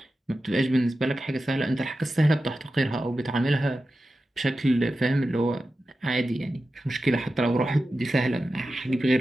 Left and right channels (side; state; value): both; normal; correlation 0.92